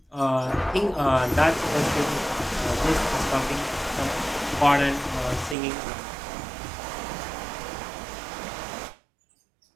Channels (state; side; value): drops out; left; at 5.6 s